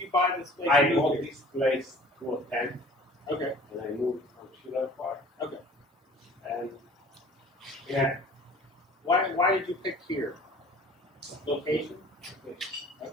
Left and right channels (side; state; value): both; normal; correlation 0.48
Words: buy this place? I bought this place 2010, Okay. and I moved from Schiller Park. Okay. And yeah, Why did you pick here? Location?